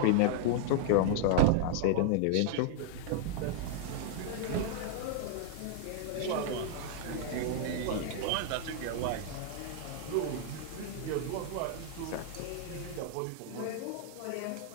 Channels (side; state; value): both; different; correlation -0.01